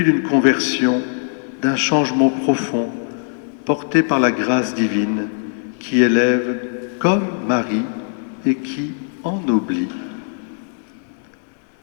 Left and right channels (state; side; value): silent; right; digital silence